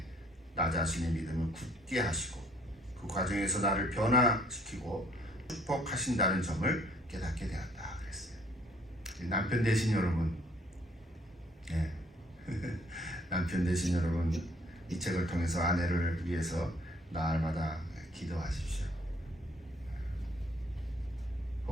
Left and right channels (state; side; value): normal; both; correlation 0.62